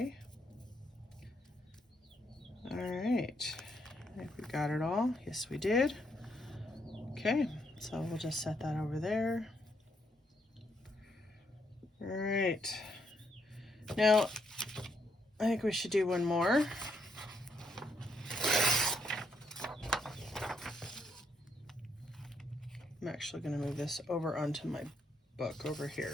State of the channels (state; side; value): normal; both; correlation 0.75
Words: All right, I think we got it all. Yes, we did. Okay, so we'll just set that over there. All right, now I think we should do one more. I'm actually going to move this over onto my book over